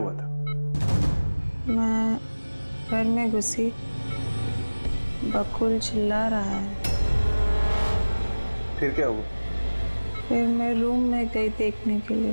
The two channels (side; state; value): both; inverted; correlation -1.00